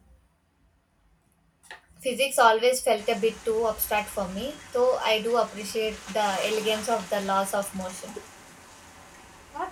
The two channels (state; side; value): identical; both; correlation 1.00